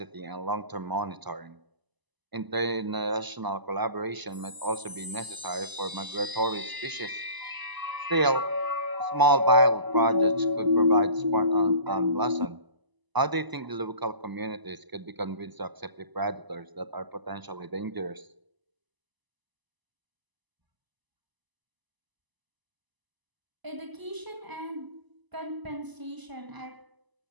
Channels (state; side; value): late; left; 1.0 ms